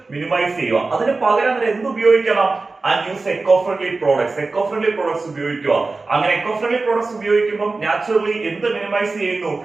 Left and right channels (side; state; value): left; quieter; 3.7 dB